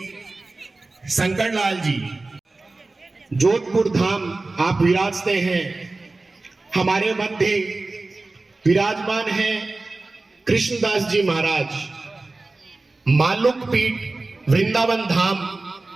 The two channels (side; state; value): left; quieter; 3.3 dB